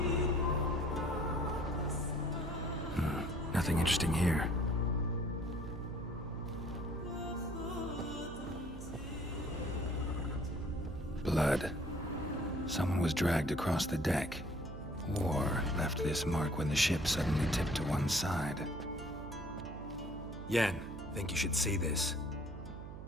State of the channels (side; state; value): right; noise; hum, 10 dB below the sound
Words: Nothing interesting here. Blood. Someone was dragged across the deck. War left this mark when the ship suddenly tipped to one side. Yen, think you should see this.